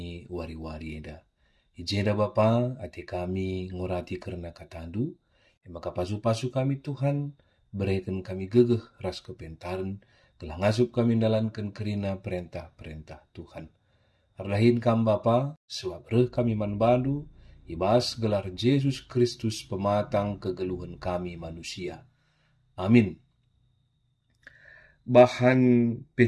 wari-wari eda. Ijenda Bapa, ate kami ngurati karena katandu, maka pasu-pasu kami Tuhan, berikan kami gegeh ras kepentaran, telah ngasup kami dalankan kerina perintah-perintah Tuhan. Ardahin kam Bapa, sebab reh kami man balu, ibas gelar Yesus Kristus pematang kegeluhan kami manusia. Amin. Bahan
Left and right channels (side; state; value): both; identical; correlation 1.00